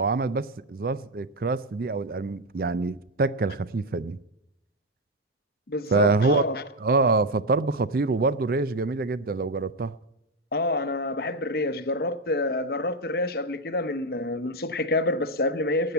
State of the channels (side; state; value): both; normal; correlation 0.07